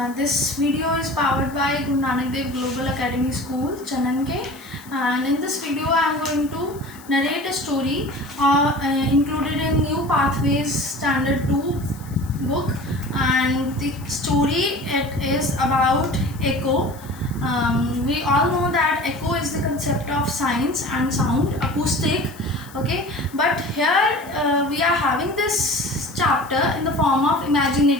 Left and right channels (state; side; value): noise; left; hiss, 21 dB below the sound